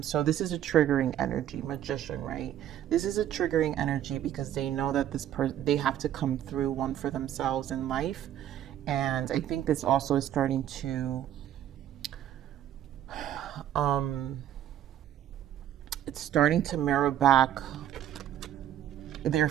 So this is a triggering energy, Magician, right? This is a triggering energy because they know that they have to come through one for themselves in life. And I think this also is starting to it's starting to mirror back their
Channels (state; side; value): quieter; left; 11.3 dB